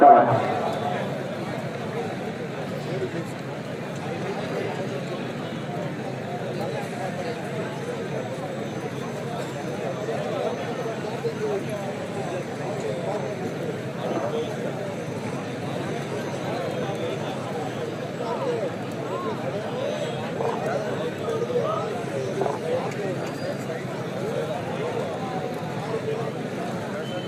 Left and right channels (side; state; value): both; identical; correlation 1.00